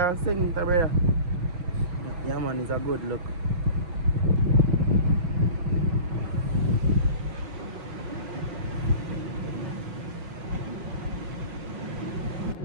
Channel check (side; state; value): left; late; 5.4 ms